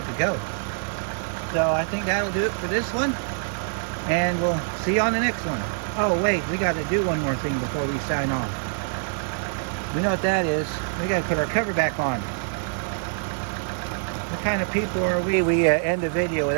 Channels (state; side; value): silent; left; digital silence